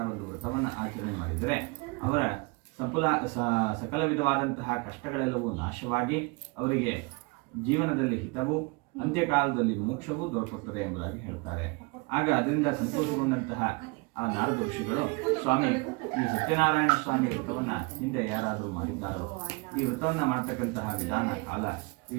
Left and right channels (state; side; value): quieter; left; 28.6 dB